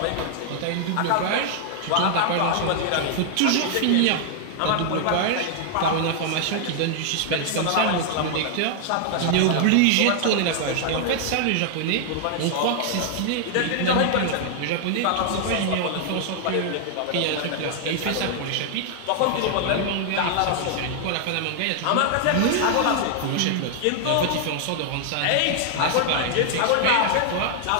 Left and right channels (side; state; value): both; different; correlation 0.00